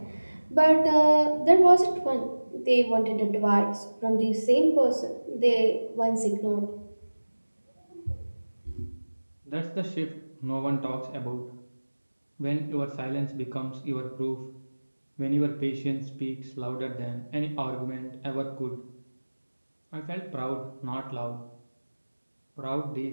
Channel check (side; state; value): both; inverted; correlation -1.00